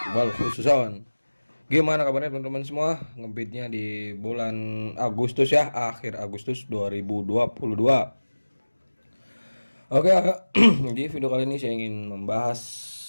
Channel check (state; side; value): inverted; both; correlation -1.00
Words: wal khususon. Gimana kabarnya teman-teman semua? Ngebeatnya di bulan Agustus ya, akhir Agustus 2022. Oke, di video kali ini saya ingin membahas